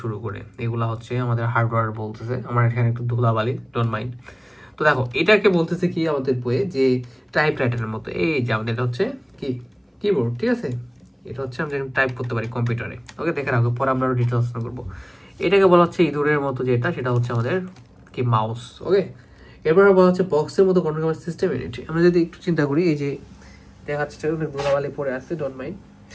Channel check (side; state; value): both; identical; correlation 1.00